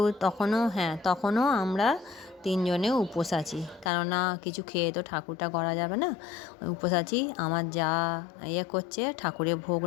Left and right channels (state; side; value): drops out; right; at 3.9 s